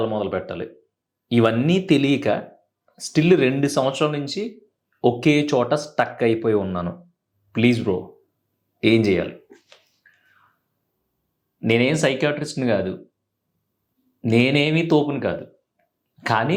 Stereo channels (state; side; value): identical; both; correlation 1.00